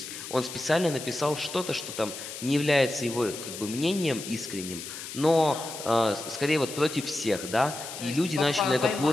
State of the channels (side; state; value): left; noise; hiss, 10 dB below the sound